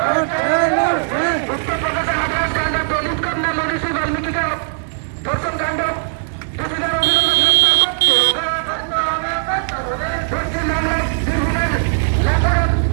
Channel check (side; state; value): left; silent; digital silence